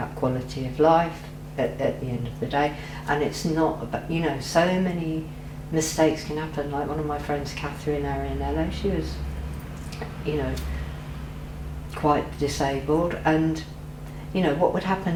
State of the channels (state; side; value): identical; both; correlation 1.00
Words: quality of life at the end of the day, and it's not about, you know, so many mistakes can happen. Like one of my friends, Catherine Arianello, she was, you know, quite disabled, and you know, what would